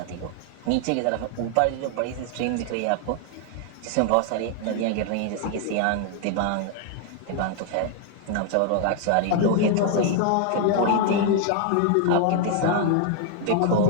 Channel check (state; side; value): different; both; correlation 0.00